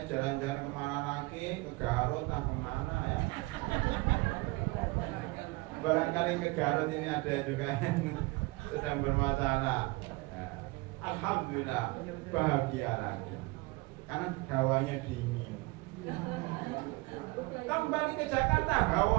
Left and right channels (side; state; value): left; quieter; 23.7 dB